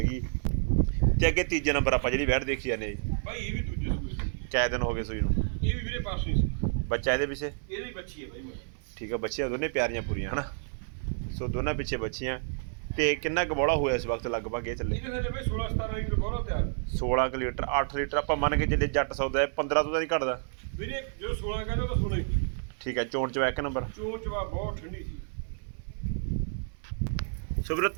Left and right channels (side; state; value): left; silent; 56 dB below the other